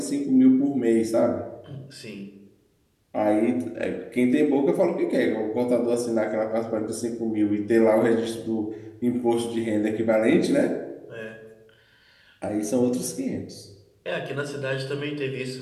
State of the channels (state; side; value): identical; both; correlation 1.00